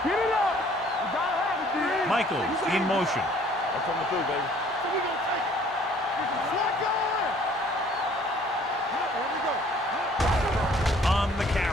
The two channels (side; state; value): both; normal; correlation 0.57